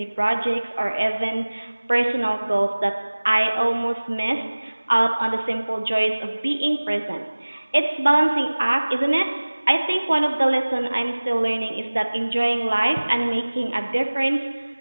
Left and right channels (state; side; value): inverted; both; correlation -1.00